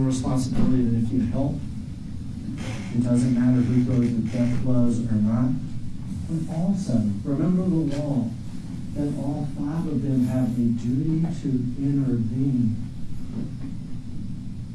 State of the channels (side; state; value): both; identical; correlation 1.00